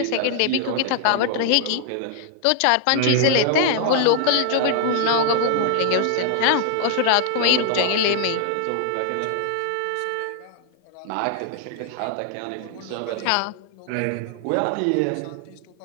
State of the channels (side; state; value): both; different; correlation 0.00